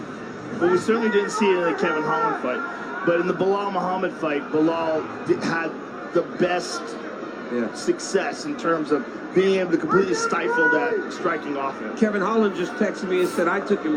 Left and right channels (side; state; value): both; identical; correlation 1.00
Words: Well, we certainly didn't see it in the Kevin Holland fight. But in the Bilal Muhammad fight, Bilal had the best success in terms of being able to completely stifle that striking offense. Kevin Holland just texted me and said, I took him